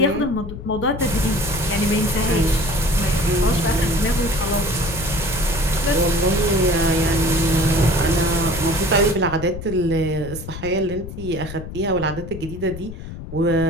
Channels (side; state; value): left; noise; rumble, 10 dB below the sound